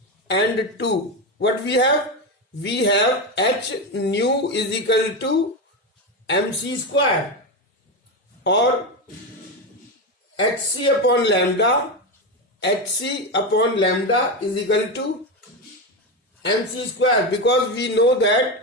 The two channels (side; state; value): both; normal; correlation 0.14